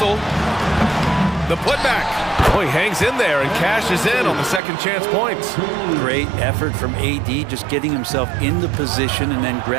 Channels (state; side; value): drops out; left; at 4.6 s